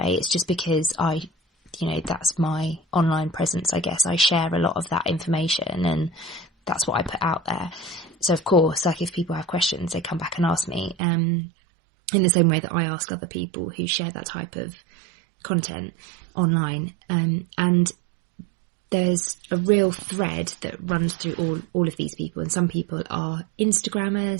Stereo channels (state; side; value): drops out; left; at 11.0 s